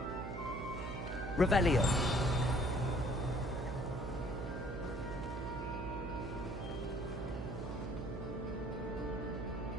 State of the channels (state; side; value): noise; right; hum, 5 dB below the sound